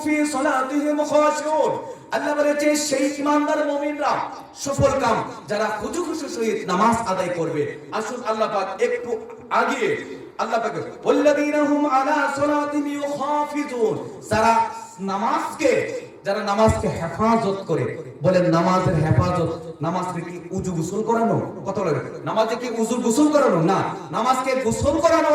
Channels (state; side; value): identical; both; correlation 1.00